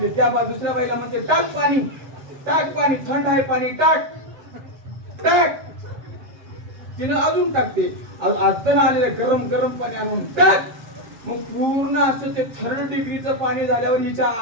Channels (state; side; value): late; left; 7.6 ms